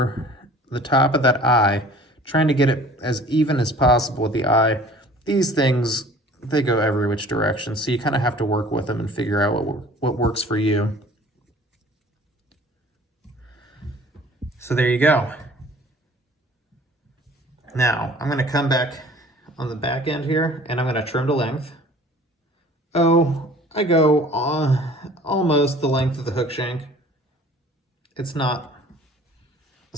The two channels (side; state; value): both; normal; correlation 0.49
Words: the top of that eye, trying to get it as even as possible with the eye. These things, they go every which direction, so you kind of have to work with them and figure out what works for you. So there you go. Now, I'm going to come back on the back end here, and I'm going to trim to length. Oh, I go almost the length of the hook shank. It's not